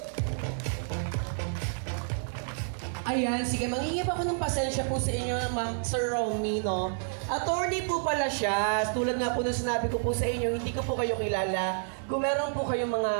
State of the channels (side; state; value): left; silent; 58 dB below the other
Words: Ayan, sige, mangingip ako ng pasensya po sa inyo, Ma'am Sir Romy, no? Attorney po pala siya. Tulad nga po na sinabi ko po sa inyo, hindi ko po kayo kilala. Kung meron po kayong mga